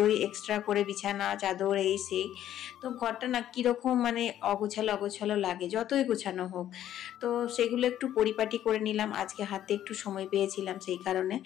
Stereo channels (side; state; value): right; quieter; 11.6 dB